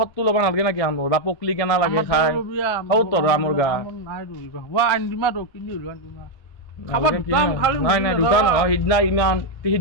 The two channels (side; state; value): right; late; 1.6 ms